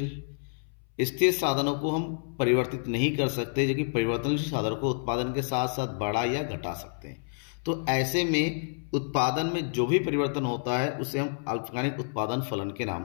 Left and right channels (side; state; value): right; silent; 59 dB below the other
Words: स्थिर साधनों को हम परिवर्तित नहीं कर सकते, जबकि परिवर्तनशील साधनों को उत्पादन के साथ साथ बढ़ा या घटा सकते हैं। तो ऐसे में उत्पादन में जो भी परिवर्तन होता है उसे हम अल्पकालिक उत्पादन फलन के नाम